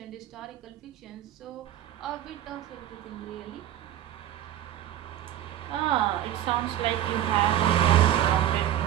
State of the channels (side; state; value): left; quieter; 12.0 dB